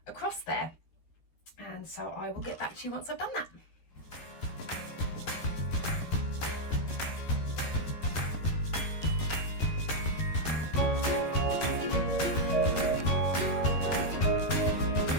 across there. And so I will get back to you once I've done that.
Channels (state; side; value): late; right; 13 ms